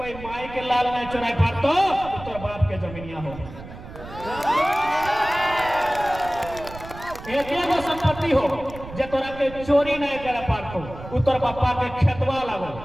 माई के लाल नहीं चुराई पारतो तो बाप के जमीनिया हो। एकेगो संपत्ति हो जे तोरा के चोरी नहीं करे पारतो, उतर पापा के खेतवा लगो।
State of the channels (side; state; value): right; noise; rumble, 14 dB below the sound